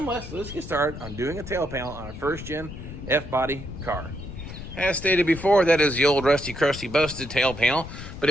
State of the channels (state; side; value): noise; left; rumble, 11 dB below the sound